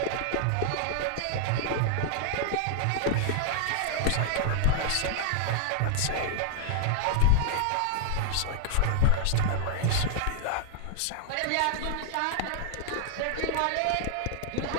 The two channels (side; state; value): both; different; correlation 0.00